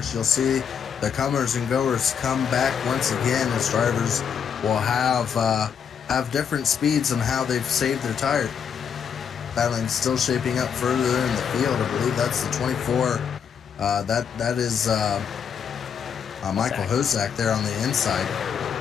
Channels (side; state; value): right; quieter; 7.4 dB